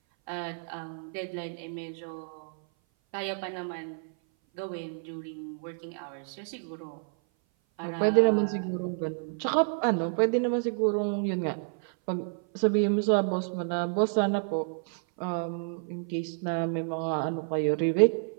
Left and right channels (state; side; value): silent; left; 56 dB below the other